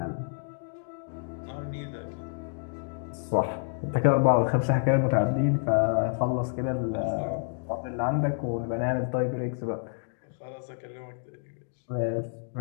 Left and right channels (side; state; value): right; silent; digital silence